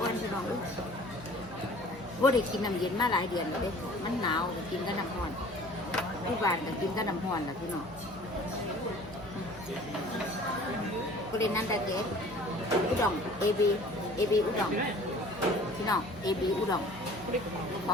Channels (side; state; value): both; normal; correlation 0.48